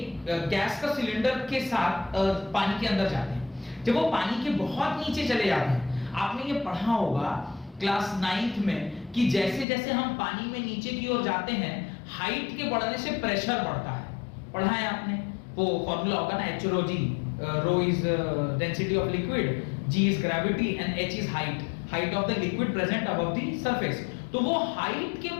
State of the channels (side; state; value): right; drops out; at 9.7 s